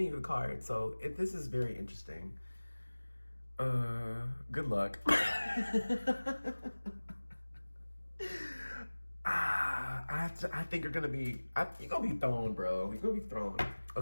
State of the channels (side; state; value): both; inverted; correlation -1.00